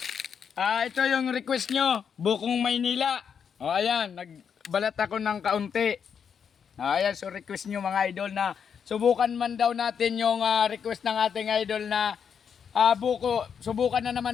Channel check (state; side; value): quieter; right; 7.2 dB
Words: Ito yung request nyo, Bukong Maynila. O ayan, nagbalat ako ng kaunti. Ayan, so request nyo mga idol na subukan man daw natin yung request ng ating idol na buko. Subukan na